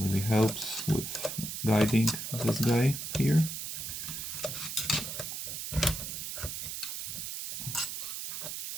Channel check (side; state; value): right; noise; hiss, 5 dB below the sound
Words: helps with guiding this guy here.